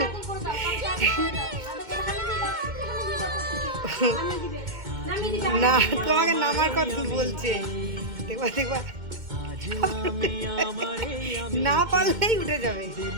না, তোমাকে নামার কথা বলছে। দেখবা দেখবা, না পারলেই উঠে যাবে।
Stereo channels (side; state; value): left; late; 2.1 ms